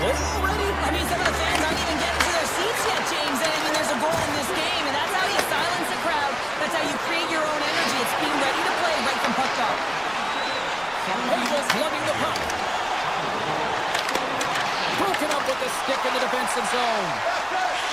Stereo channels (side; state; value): left; noise; rumble, 25 dB below the sound